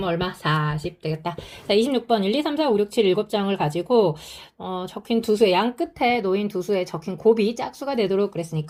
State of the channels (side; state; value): both; identical; correlation 1.00